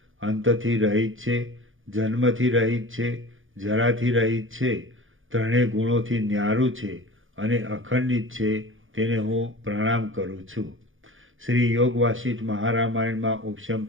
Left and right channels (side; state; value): left; late; 0.58 ms